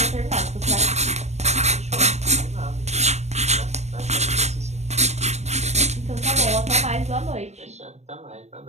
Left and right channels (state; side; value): late; left; 0.33 ms